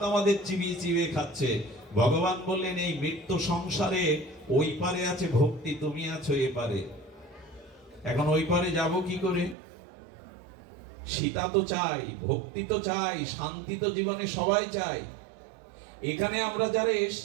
আমাদের চিবিয়ে চিবিয়ে খাচ্ছে। ভগবান বললেন এই মৃত্যু সংসারে ওই পারে আছে ভক্তি, তুমি আছো এপারে। এখন ওই পারে যাব কি করে? সীতা তো চাই, ভক্তি তো চাই, শান্তি তো জীবনে সবাই চাই। এখানে আমরা যারা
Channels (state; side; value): drops out; left; at 9.6 s